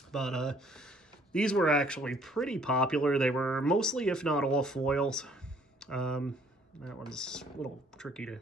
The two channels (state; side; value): normal; both; correlation 0.61